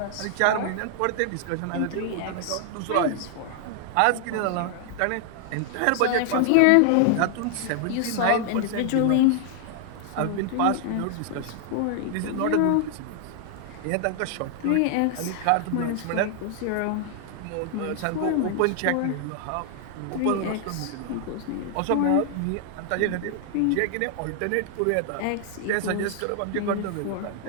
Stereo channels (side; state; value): both; different; correlation 0.00